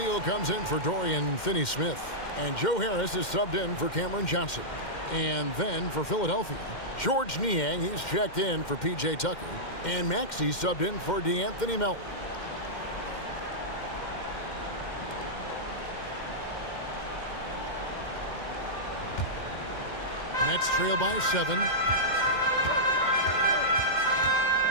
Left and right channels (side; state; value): right; late; 2.1 ms